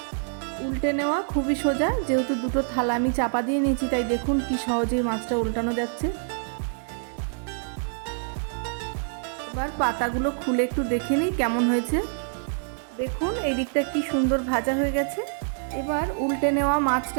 উল্টে নেওয়া খুবই সোজা, যেহেতু 2টো থালা আমি চাপা দিয়ে নিয়েছি তাই দেখুন কি সহজেই মাছটা উল্টানো যাচ্ছে। এবার পাতাগুলো খুলে একটু দেখে নিই কেমন হয়েছে। দেখুন এই দিকটা কি সুন্দর ভাজা হয়ে গেছে। এবার উল্টে নেওয়া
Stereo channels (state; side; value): silent; left; digital silence